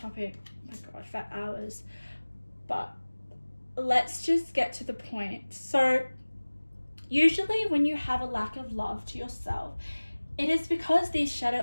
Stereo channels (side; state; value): both; inverted; correlation -1.00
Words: oh my god, for hours. But let's just get to the point. So usually when you have a lack of love to yourself, it is because these